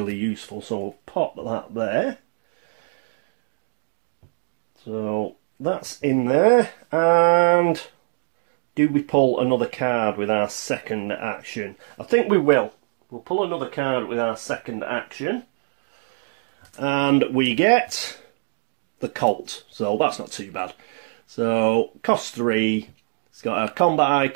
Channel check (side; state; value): left; silent; digital silence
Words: useful. So we'll pop that there. So that's in there. And do we pull another card with our second action? I think we will. We'll pull another card with our second action. And we get the Colt, so that's not too bad. So cost 3, it's got a combat